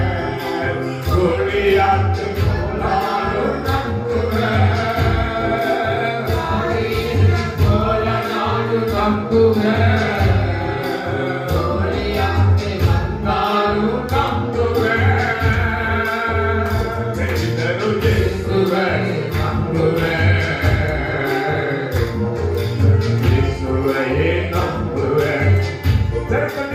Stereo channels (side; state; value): both; identical; correlation 1.00